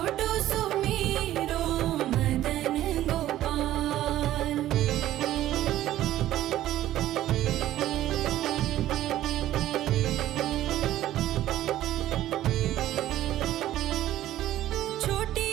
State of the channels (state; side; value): quieter; left; 13.6 dB